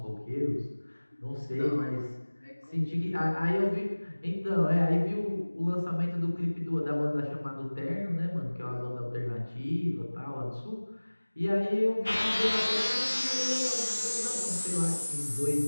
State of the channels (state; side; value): inverted; both; correlation -1.00